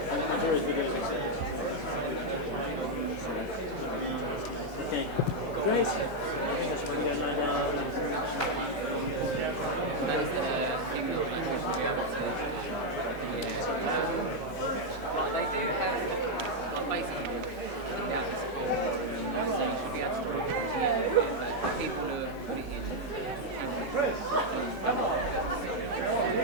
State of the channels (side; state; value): both; normal; correlation 0.00